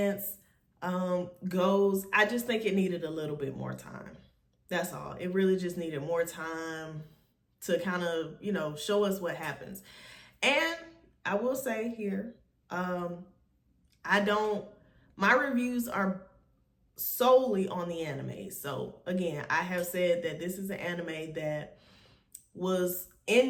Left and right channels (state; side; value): identical; both; correlation 1.00